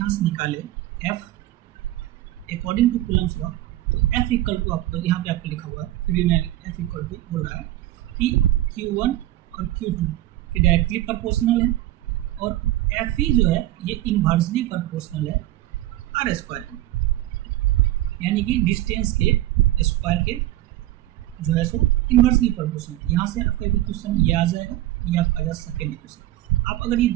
से निकालें F according to Coulomb's law, तो F इक्वल टू, आपको यहाँ पे आपको लिखा हुआ है, फिर भी मैं F इक्वल टू बोल रहा है कि Q1 और Q2 के डायरेक्टली प्रोपोर्शनल है, और Fe जो है ये इन्वर्सली प्रोपोर्शनल है आर स्क्वायर के, यानी कि डिस्टेंस के स्क्वायर के जो है सो इन्वर्सली प्रोपोर्शनल। यहाँ से आपका एक क्वेश्चन ये आ जाएगा, ये आपका आ जाएगा सेकेंड इक्वेशन। आप अगर ये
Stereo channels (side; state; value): left; quieter; 15.2 dB